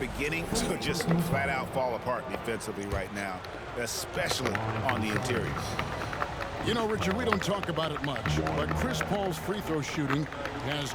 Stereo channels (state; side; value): identical; both; correlation 1.00